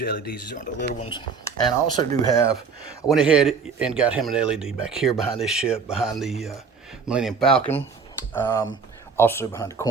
LEDs. These aren't the little ones. And I also do have, I went ahead and got him an LED back here behind this ship, behind the Millennium Falcon. Also behind the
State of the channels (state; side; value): quieter; left; 5.4 dB